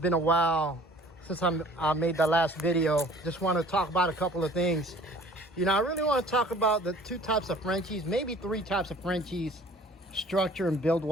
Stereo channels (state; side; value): normal; both; correlation 0.50